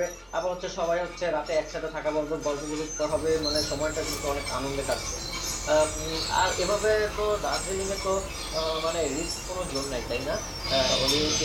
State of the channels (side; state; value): both; identical; correlation 1.00